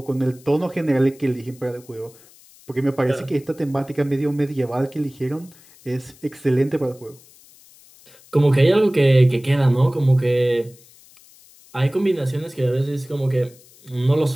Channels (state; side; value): noise; left; hiss, 26 dB below the sound